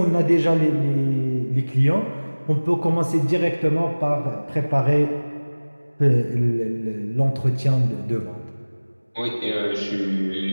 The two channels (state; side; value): inverted; both; correlation -1.00